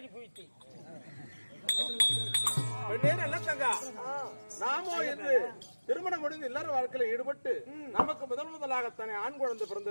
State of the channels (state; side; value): inverted; both; correlation -1.00